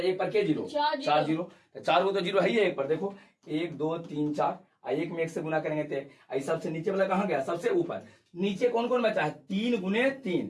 पर के जीरो 4 जीरो, तो 4 को तो जीरो है ही है एक पर, देखो 1 2 3 4, एक में 1 से गुना करेंगे तो सबसे नीचे वाला कहाँ गया सबसे ऊपर, नीचे कौन कौन बचा है 3 गुने 3,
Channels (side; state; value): both; identical; correlation 1.00